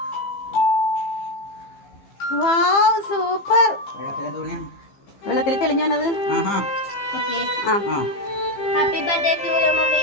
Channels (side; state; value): right; late; 15 ms